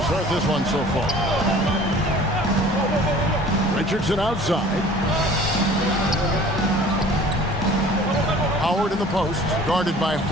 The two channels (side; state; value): both; normal; correlation 0.47